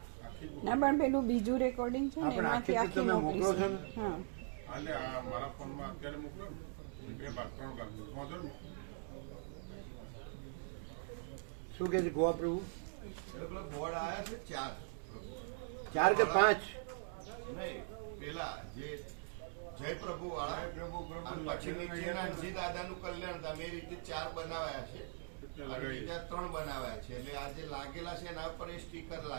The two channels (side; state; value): left; silent; digital silence